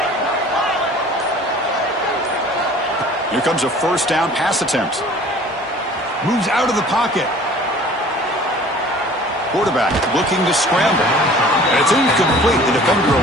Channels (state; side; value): normal; both; correlation 0.48